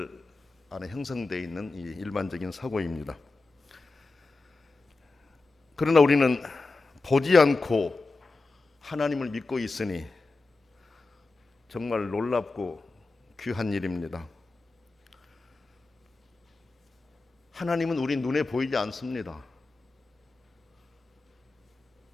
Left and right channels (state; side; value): quieter; right; 3.5 dB